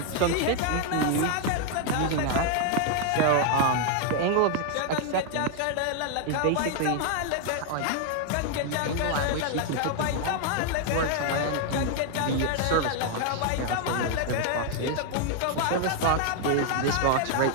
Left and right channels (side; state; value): both; different; correlation 0.00